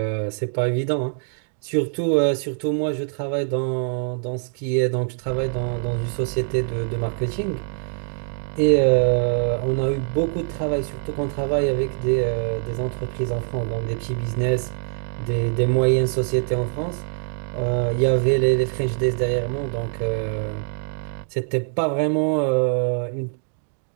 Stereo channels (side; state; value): left; silent; 61 dB below the other